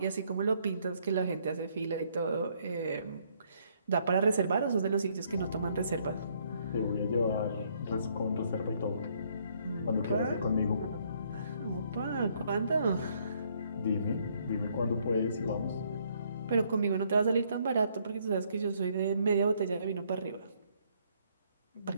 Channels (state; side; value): inverted; both; correlation -0.68